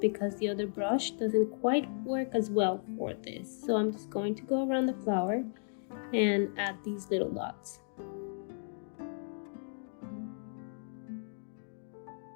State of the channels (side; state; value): right; silent; digital silence